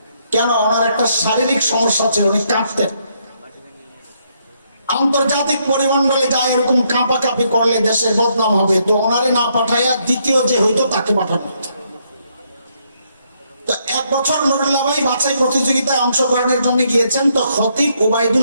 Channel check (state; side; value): inverted; both; correlation -0.74